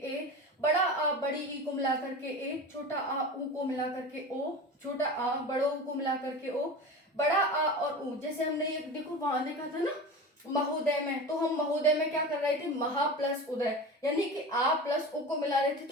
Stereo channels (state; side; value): normal; both; correlation 0.30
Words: बड़ा आ बड़ी ई को मिलाकर के ए, छोटा आ ऊ को मिलाकर के ओ, छोटा आ बड़ो ऊ को मिलाकर के ओ, बड़ा आ और ऊ। जैसे हमने ये देखो वहां देखा था ना महोदय में, तो हम महोदय में क्या कर रहे थे, महा प्लस उदय, यानी कि आ प्लस ओ को मिला रहे थे